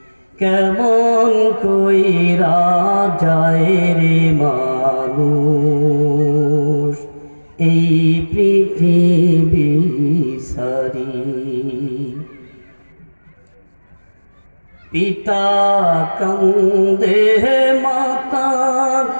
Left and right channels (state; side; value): inverted; both; correlation -1.00